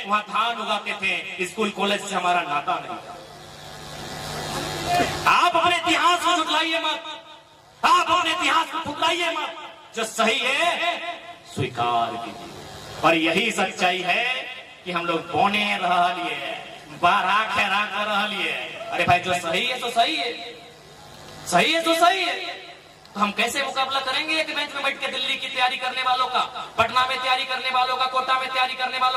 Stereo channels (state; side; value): identical; both; correlation 1.00